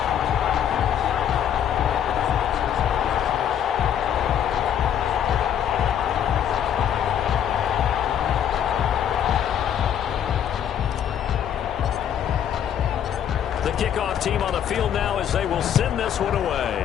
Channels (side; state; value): right; quieter; 9.4 dB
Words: Kickoff team on the field now as they will send this one away.